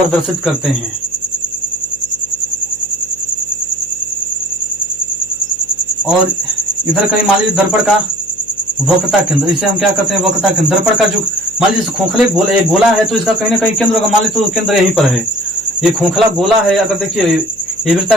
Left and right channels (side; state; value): left; noise; hum, 26 dB below the sound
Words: करते हैं। और इधर कहीं मान लीजिए दर्पण का वक्रता केंद्र, इसे हम क्या करते हैं, वक्रता केंद्र। दर्पण का जो मान लीजिए खोखले गोला है तो इसका कहीं ना कहीं केंद्र होगा। मान लीजिए तो केंद्र यहीं पर है। ये खोखला गोला है, अगर देखिए ये